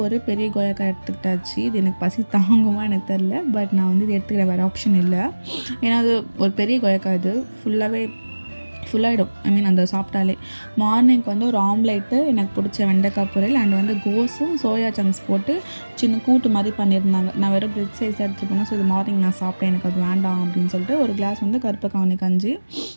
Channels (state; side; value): inverted; both; correlation -1.00